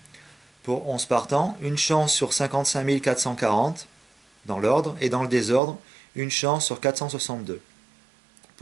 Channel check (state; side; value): drops out; left; at 5.6 s